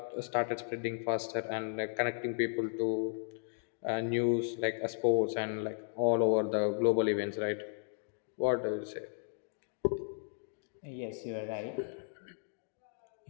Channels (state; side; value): silent; right; digital silence